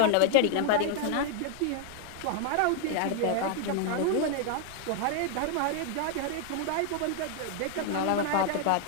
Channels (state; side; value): different; both; correlation 0.00